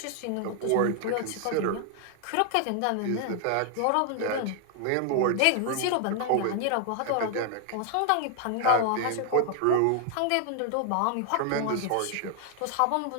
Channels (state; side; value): different; both; correlation 0.00